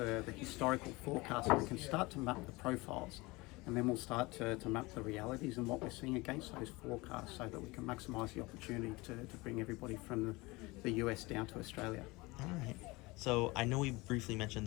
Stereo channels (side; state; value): right; quieter; 23.1 dB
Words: historical forecast, and we can start to map the profiles, and then we'll start to map the realities and what we're seeing against those forecasts so that we can maximise the opportunity to bring everybody from the US down to Australia. All right. So I know we briefly